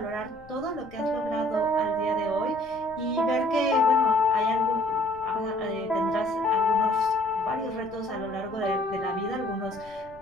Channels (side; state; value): left; noise; rumble, 23 dB below the sound